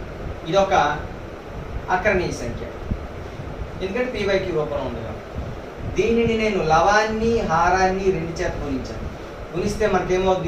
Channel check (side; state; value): both; identical; correlation 1.00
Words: ఇది ఒక అకరణీయ సంఖ్య, ఎందుకంటే p/q రూపంలో ఉంది కాబట్టి. దీనిని నేను లవాన్ని, హారాన్ని 2 చేత గుణించాను. గుణిస్తే